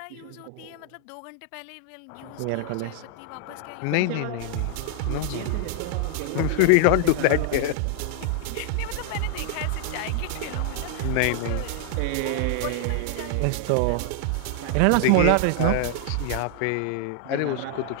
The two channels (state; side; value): different; both; correlation 0.00